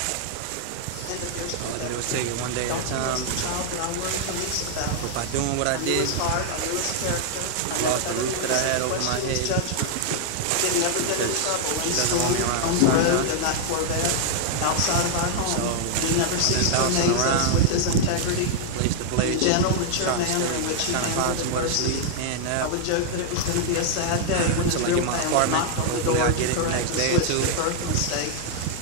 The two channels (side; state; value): both; different; correlation 0.00